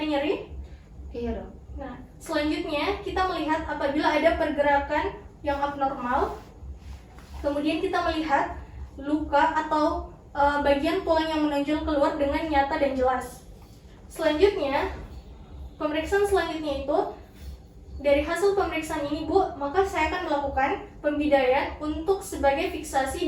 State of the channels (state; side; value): identical; both; correlation 1.00